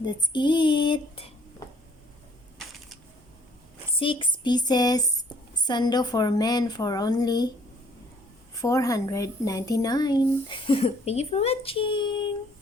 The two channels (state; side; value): normal; both; correlation 0.60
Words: it. 6 pieces Sando For Men for only $499. Thank you for watching.